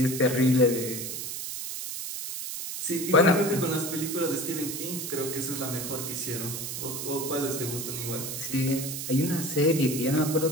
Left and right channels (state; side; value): noise; right; hiss, 6 dB below the sound